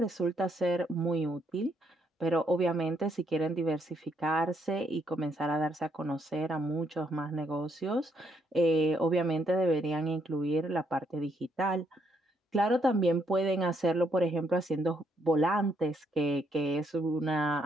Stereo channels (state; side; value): normal; both; correlation 0.73